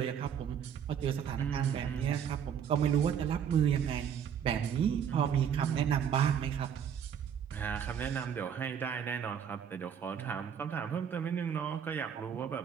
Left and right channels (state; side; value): quieter; left; 8.2 dB